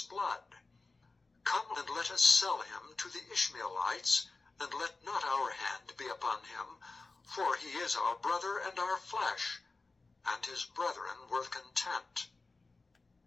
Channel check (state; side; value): quieter; right; 3.7 dB